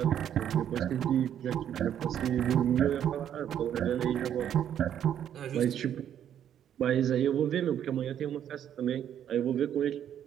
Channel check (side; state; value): left; quieter; 9.9 dB